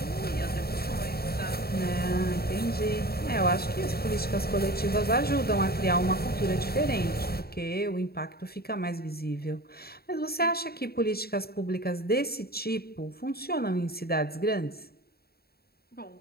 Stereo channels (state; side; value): late; right; 0.45 ms